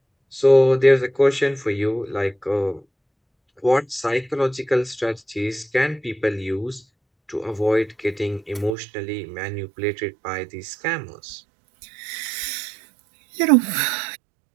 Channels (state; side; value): drops out; left; at 8.8 s